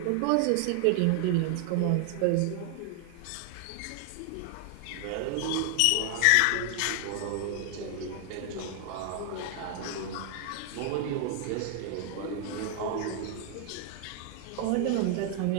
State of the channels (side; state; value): both; different; correlation 0.00